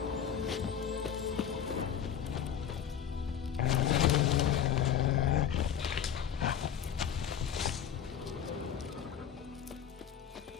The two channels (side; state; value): right; quieter; 8.7 dB